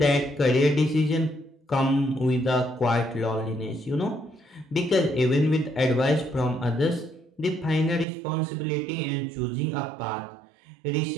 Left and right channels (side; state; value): left; drops out; at 8.1 s